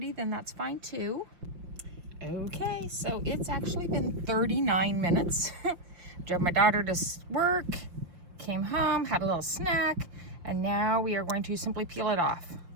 then that's fine too. Okay, so it's actually been 39 minutes. Drove my daughter to work, came home, had a little snack, and now we are going to simply peel it off.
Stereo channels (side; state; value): left; late; 5.7 ms